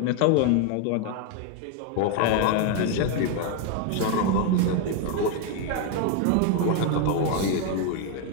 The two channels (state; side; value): different; both; correlation 0.01